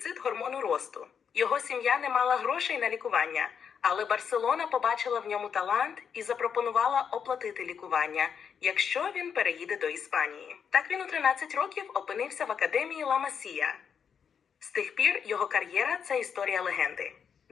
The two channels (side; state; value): right; quieter; 7.2 dB